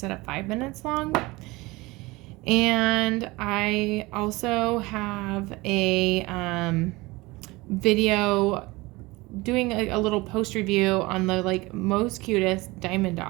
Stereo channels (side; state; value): left; quieter; 22.1 dB